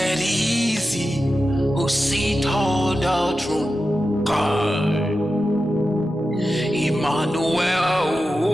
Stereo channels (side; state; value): both; normal; correlation 0.92